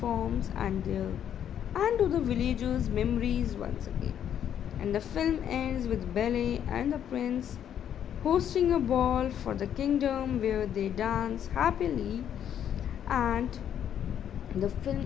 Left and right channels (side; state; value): right; quieter; 9.6 dB